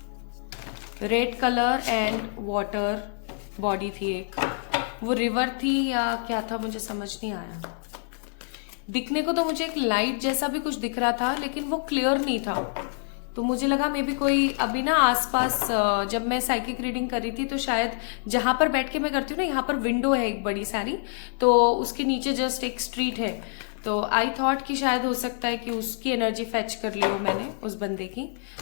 Red colour and water body थी, एक वो रिवर थी या क्या था मुझे समझ नहीं आया। दिखने को तो मुझे एक लाइट जैसा भी कुछ दिख रहा था, लेकिन वो क्लियर नहीं था, तो मुझे लगा मे बी कोई अभी ना आसपास, जब मैं साइकिक रीडिंग कर रही थी तो शायद जहां पर बैठ के मैं करती हूँ ना, यहाँ पर विंडो है एक बड़ी सारी, तो उसके नीचे जस्ट एक स्ट्रीट है, तो आई थॉट कि शायद हो सकता है कि उसकी एनर्जी फेच कर ली हो मैंने उस बंदे की,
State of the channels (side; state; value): right; silent; digital silence